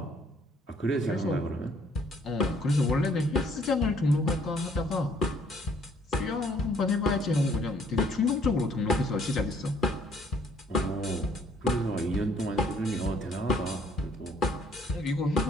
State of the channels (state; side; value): normal; both; correlation 0.63